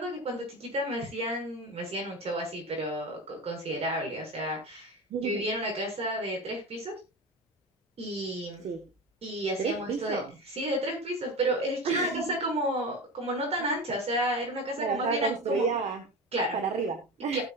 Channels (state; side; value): normal; both; correlation 0.26